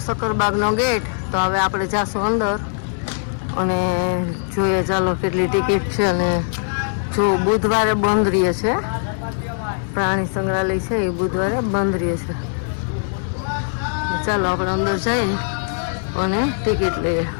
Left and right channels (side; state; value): right; silent; digital silence